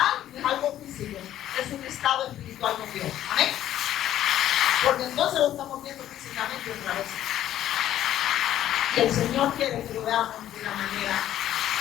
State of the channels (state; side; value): quieter; right; 12.2 dB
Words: no es algo físico, es un estado espiritual con Dios. Amén. Porque entonces lo estamos viendo físicamente otra vez. Y el Señor quiere que lo veamos de la manera